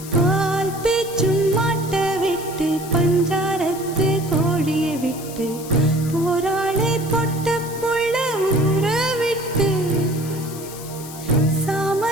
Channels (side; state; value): left; noise; hiss, 14 dB below the sound